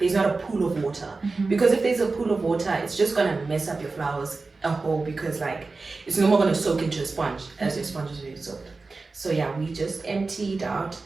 a pool of water, because if there's a pool of water, it's just gonna mess up your flowers a whole, because like it's no more gonna soak into a sponge as your sponge is already soaked. So yeah, we just emptied out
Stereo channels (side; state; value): left; quieter; 3.8 dB